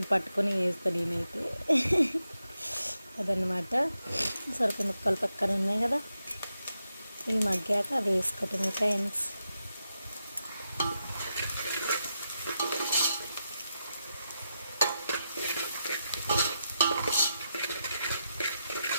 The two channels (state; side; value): inverted; both; correlation -0.86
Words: పట్టుకొని వేస్తాను నేనైతే. అదనమాట. సొరకాయ ముక్కలు పక్కన ఉన్నాయి కదా, ఇవి మగ్గాక వేసుకోవటమే ఫ్రెండ్స్.